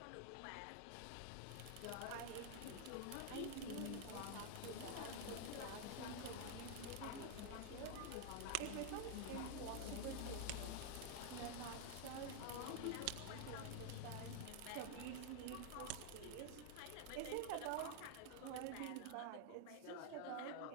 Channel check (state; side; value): different; both; correlation 0.00